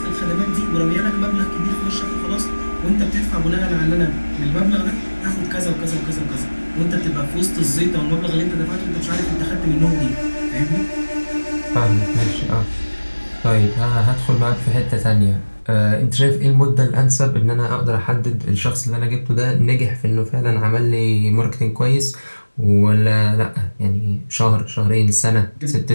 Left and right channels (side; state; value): both; inverted; correlation -1.00